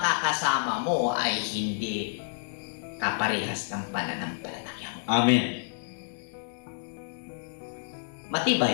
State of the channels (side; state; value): right; silent; 58 dB below the other